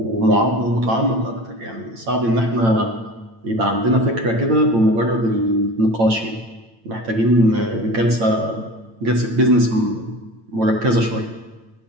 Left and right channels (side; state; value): left; late; 8.9 ms